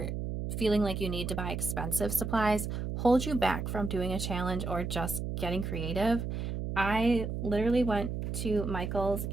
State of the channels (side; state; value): right; noise; hum, 3 dB below the sound